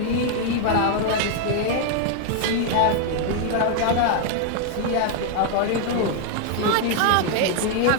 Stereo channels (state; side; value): different; both; correlation 0.00